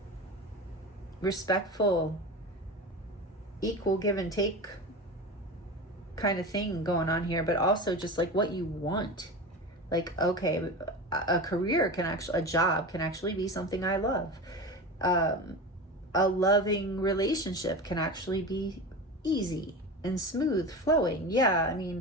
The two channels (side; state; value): both; normal; correlation 0.27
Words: respectful, equal give and take kind of thing going on here, but also just like what you want. Like, okay, a career a job can actually be something I love. A loving relationship can actually be easy and smooth flowing. Yeah, I